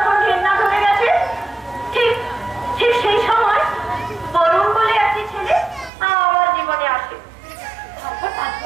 ঘেন্না ধরে গেছে, ঠিক সেই সময় বরুণ বলে একটি ছেলে আমার জীবনে আসে।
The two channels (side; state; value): left; drops out; at 5.9 s